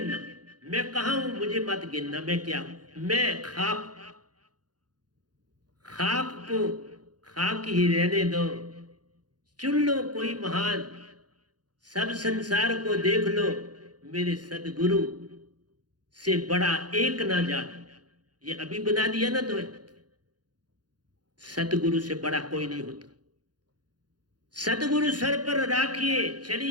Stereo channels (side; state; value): left; late; 0.69 ms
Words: मैं कहाँ हूं मुझे मत गिनना, मैं क्या हूं, मैं खाक, खाक को खाक ही रहने दो, चुन लो कोई महान, सब संसार को देख लो, मेरे सदगुरु से बड़ा एक ना जान। ये अभी बना दिया ना तो, सतगुरु से बड़ा कोई नहीं होता। सतगुरु सर पर राखिए,